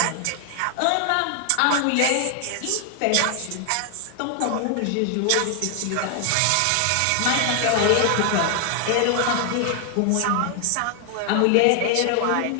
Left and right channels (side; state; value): both; different; correlation 0.00